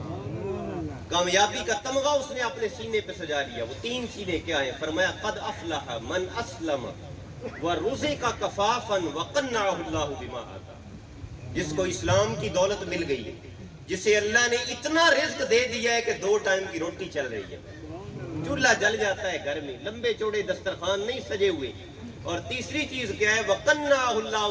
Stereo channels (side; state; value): both; identical; correlation 1.00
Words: کامیابی کا تمغہ اس نے اپنے سینے پہ سجا لیا۔ وہ 3 چیزیں کیا ہیں؟ فرمایا قد افلح من اسلم ورزق کفافا وقنعہ اللہ بما آتا، جس کو اسلام کی دولت مل گئی ہے، جسے اللہ نے اتنا رزق دے دیا ہے کہ 2 ٹائم کی روٹی چل رہی ہے، چولہا جل جاتا ہے گھر میں، لمبے چوڑے دسترخوان نہیں سجے ہوئے، اور تیسری چیز کیا ہے؟ وَقَنَّعَهُ